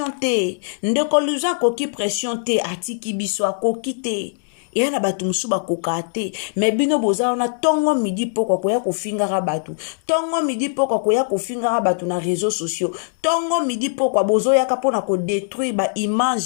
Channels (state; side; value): silent; right; digital silence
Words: te ndeko Louison koki pression te atiki biso akoki te yana batu musu bakoka te mais bino boza na tongo midi poko koya kofingaka batu tongo midi poko koya kofingaka batu na réseaux sociaux tongo midi poko bozo yaka pona ko détruire ba